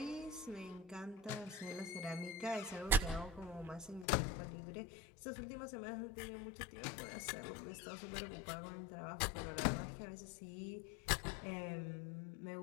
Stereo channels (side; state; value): right; drops out; at 4.0 s